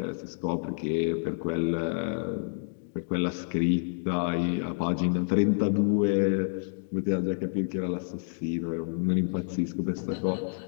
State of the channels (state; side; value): silent; right; digital silence